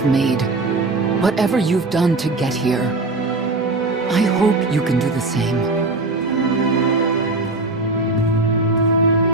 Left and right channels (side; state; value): left; quieter; 3.2 dB